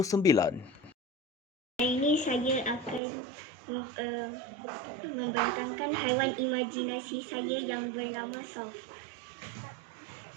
Hari ini saya akan membentangkan haiwan imajinasi saya yang bernama Soft.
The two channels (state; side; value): drops out; left; at 3.0 s